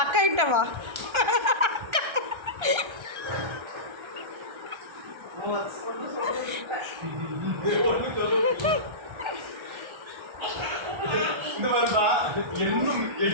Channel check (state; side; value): late; left; 1.3 ms